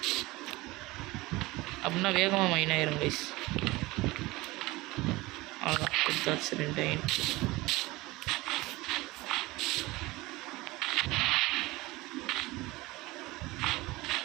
அப்படின்னா வேகமாக மைண்ட் ஆயிரும் கைஸ். அவ்வளோதான், கொடுத்தாச்சு 2 அயன்.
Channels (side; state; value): left; quieter; 20.6 dB